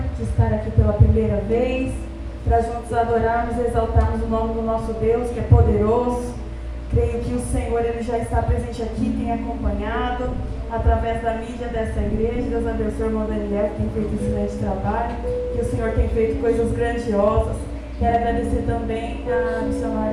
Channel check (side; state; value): both; identical; correlation 1.00